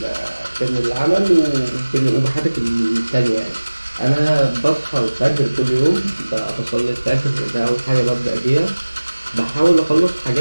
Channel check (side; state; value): both; inverted; correlation -1.00